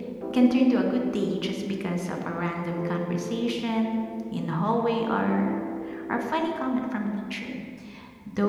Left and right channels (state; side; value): identical; both; correlation 1.00